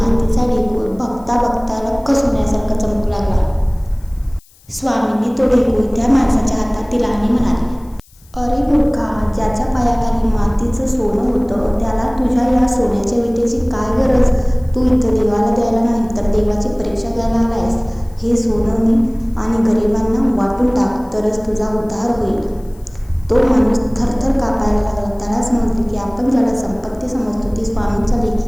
ढेकूळ बघता बघता लख्ख सोन्यासारखा चमकू लागला. स्वामींनी तो ढेकूळ त्या माणसाच्या हातात दिला आणि म्हणाले, अरे मूर्खा, ज्याच्या पायाखाली मातीचं सोनं होतं त्याला तुझ्या या सोन्याच्या विटेची काय गरज? तू इथं देवाला द्यायला नाही तर देवाची परीक्षा घ्यायला आलायस. हे सोनं आणि गरिबांना वाटून टाक, तरच तुझा उद्धार होईल. तो माणूस थरथर कापायला लागला. त्याला समजले की आपण ज्याला संपत्ती समजतो ती स्वामींच्या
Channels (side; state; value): left; noise; hiss, 29 dB below the sound